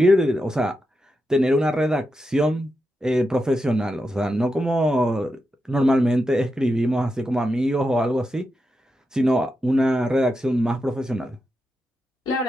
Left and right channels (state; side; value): normal; both; correlation 0.88